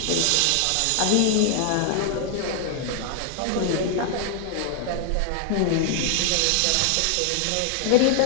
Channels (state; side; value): different; both; correlation 0.00